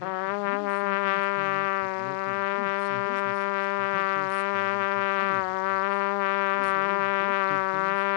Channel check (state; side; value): silent; right; digital silence